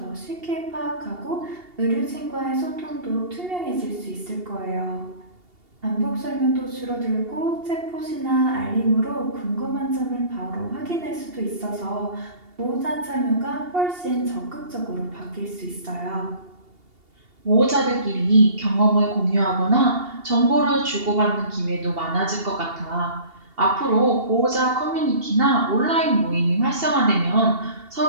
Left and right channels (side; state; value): left; late; 2.8 ms